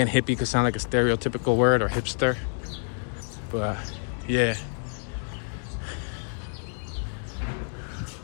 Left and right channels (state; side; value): silent; right; 60 dB below the other